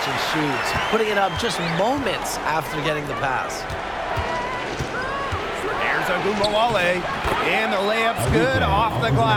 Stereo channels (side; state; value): both; identical; correlation 1.00